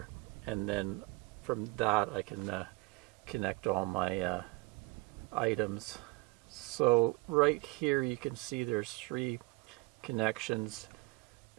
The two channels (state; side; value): quieter; left; 25.1 dB